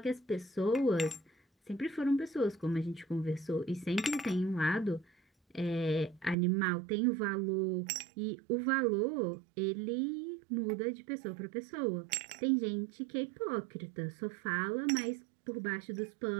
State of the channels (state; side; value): drops out; left; at 6.4 s